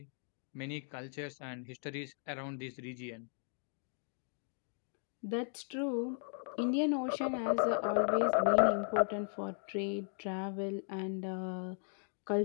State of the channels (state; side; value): silent; right; 53 dB below the other